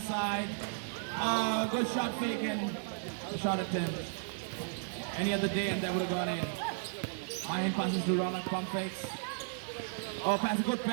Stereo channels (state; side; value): silent; left; 55 dB below the other